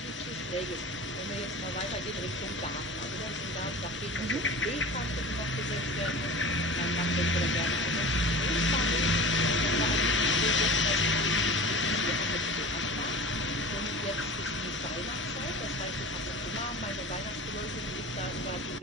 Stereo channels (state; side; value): normal; both; correlation 0.36